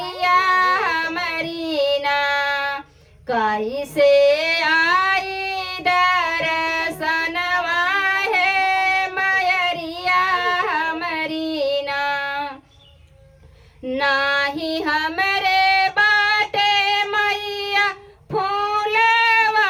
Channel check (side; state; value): both; identical; correlation 1.00